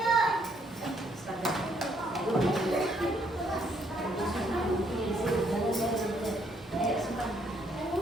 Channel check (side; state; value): both; normal; correlation 0.70